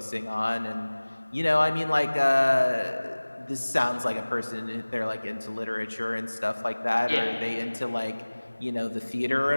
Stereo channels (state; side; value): inverted; both; correlation -1.00